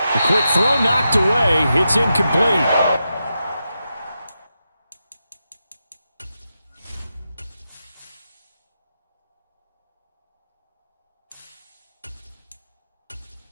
quick throw knocked away. It's incomplete.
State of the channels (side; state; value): both; inverted; correlation -0.88